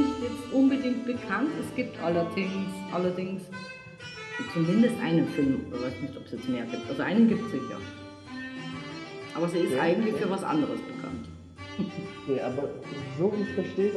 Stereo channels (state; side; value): identical; both; correlation 1.00